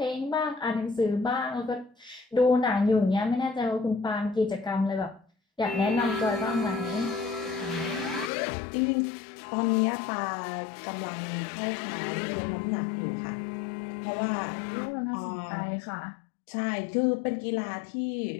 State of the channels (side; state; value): right; drops out; at 8.3 s